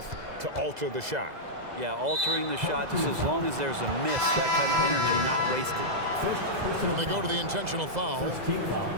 to alter the shot. Yeah, altering the shot just as long as there's a miss, that kind of energy not wasted. And they go to the intentional foul.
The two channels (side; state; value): left; late; 2.0 ms